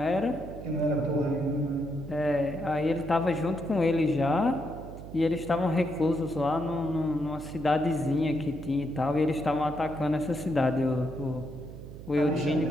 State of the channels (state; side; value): noise; right; hum, 13 dB below the sound